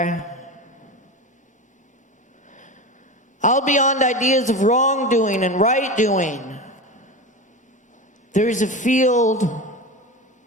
Out beyond ideas of wrongdoing and right doing, there is a field.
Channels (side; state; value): both; normal; correlation 0.25